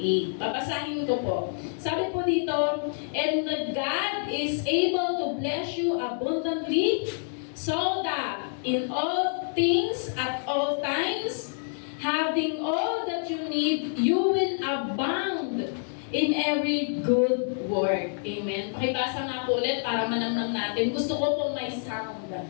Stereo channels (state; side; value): silent; right; digital silence